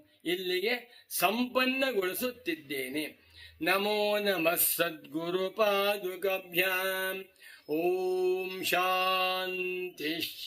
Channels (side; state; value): both; identical; correlation 1.00